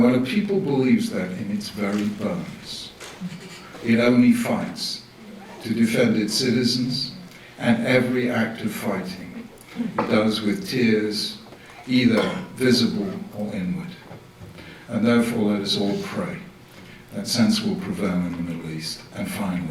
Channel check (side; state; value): both; identical; correlation 1.00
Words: when a people believes that in its very bones, it only fights to defend its citizens, and every act of fighting it does with tears, either visible or inward. And therefore, let us all pray that sense will prevail in the Middle East, and